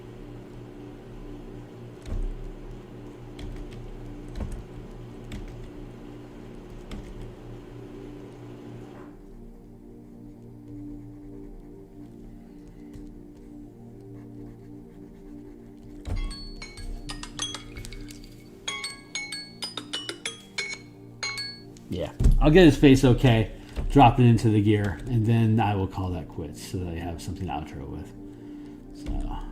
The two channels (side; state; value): both; identical; correlation 1.00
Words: Yeah, I'll get his face okay. Drop it into the gear, and then I will call that quits so that I have something to outro with. So,